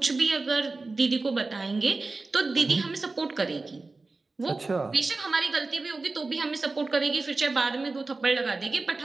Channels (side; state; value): left; quieter; 3.6 dB